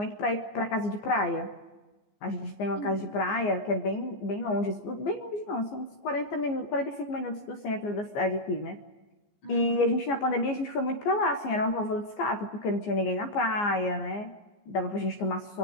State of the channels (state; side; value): late; right; 14 ms